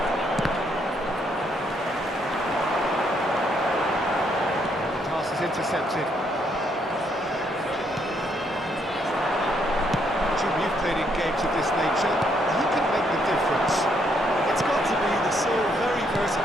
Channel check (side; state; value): both; normal; correlation 0.72